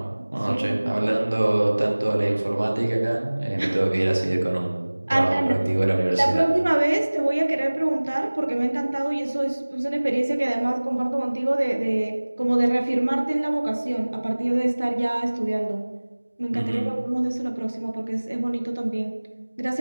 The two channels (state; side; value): inverted; both; correlation -1.00